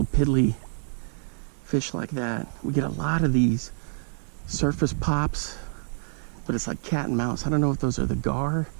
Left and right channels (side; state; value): left; silent; 60 dB below the other